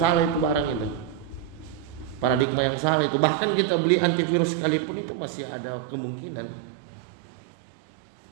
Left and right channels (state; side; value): drops out; left; at 2.5 s